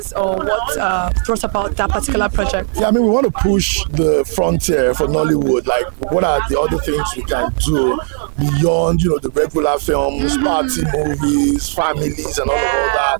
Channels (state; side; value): silent; left; 69 dB below the other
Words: or what brought about that particular project? Yeah, I mean, we want to push the frontier for Nollywood. Like, what are the other things we can do beyond, the regular films, party movies, families, and all of all